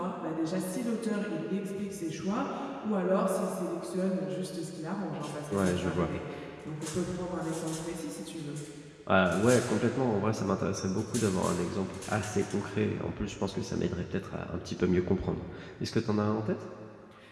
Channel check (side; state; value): both; identical; correlation 1.00